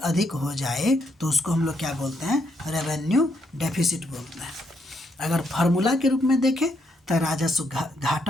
हो जाए तो उसको हम लोग क्या बोलते हैं? रेवेन्यू डेफिसिट बोलते हैं। अगर फार्मूला के रूप में देखें तो राजस्व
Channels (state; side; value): normal; both; correlation 0.76